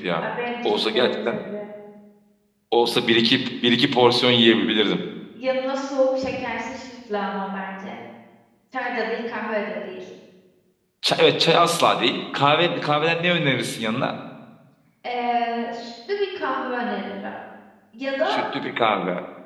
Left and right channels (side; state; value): both; identical; correlation 1.00